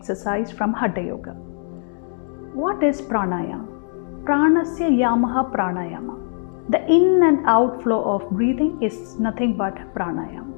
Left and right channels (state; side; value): silent; right; digital silence